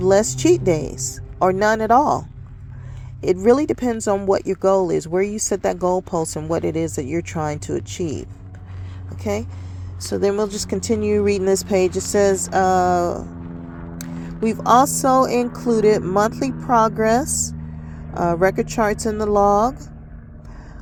less cheat days or none at all. It really depends on what your goal is, where you set that goalpost, and what it is that you're trying to achieve. Okay? So then we'll just continue reading this page. It says, we've also included monthly progress record charts in the log.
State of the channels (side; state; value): both; identical; correlation 1.00